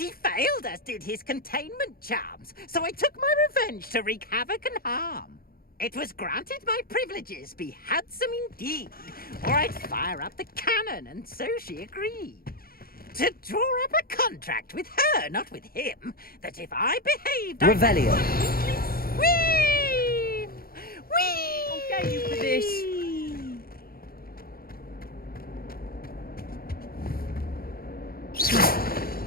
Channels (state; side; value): late; right; 0.43 ms